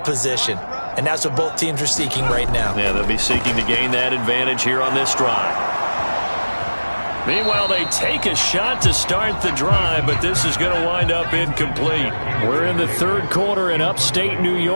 position? And that's what both teams are seeking right now. Yeah, they'll be seeking to gain that advantage here on this drive. Meanwhile, they take a shot to start the drive, but this is going to wind up incomplete. We're in the third quarter in upstate New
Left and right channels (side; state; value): both; inverted; correlation -1.00